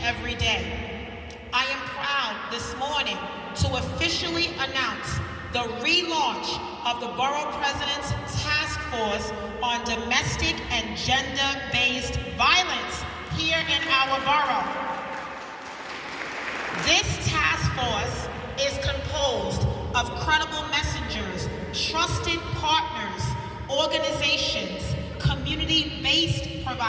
every day. I am proud this morning to officially announce the relaunch of the Borough President's Task Force on Domestic and Gender-Based Violence here in our borough. This task force is composed of credible messengers, trusted partners, organizations, community-based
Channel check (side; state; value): both; identical; correlation 1.00